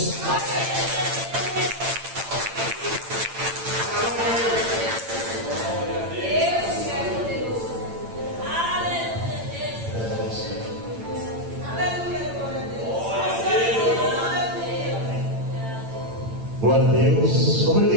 Glória a Deus. Como é que a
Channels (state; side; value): late; left; 8.9 ms